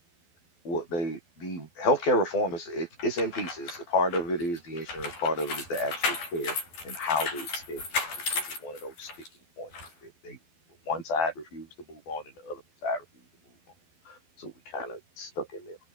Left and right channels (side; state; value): right; late; 12 ms